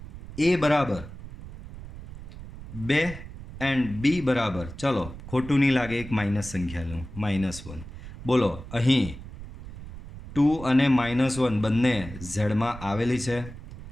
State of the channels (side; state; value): right; noise; rumble, 13 dB below the sound